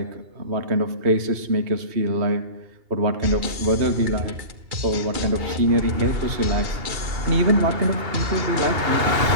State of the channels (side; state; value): left; late; 2.8 ms